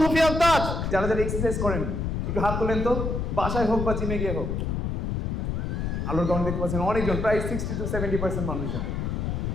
সুফিয়ান তাজ। যারা যারা এক্সারসাইজ করেন একটু হাত তোলেন তো, বাসায় হোক বা জিমে গিয়ে হোক। আলোর কারণ দেখতে পাচ্ছেন অনেকজন, প্রায় 60 to 70% মানুষজন।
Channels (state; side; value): noise; left; rumble, 1 dB below the sound